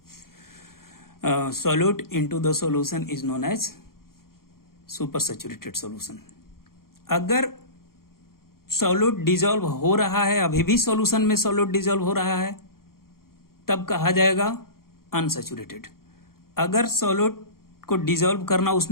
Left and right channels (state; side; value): late; right; 0.92 ms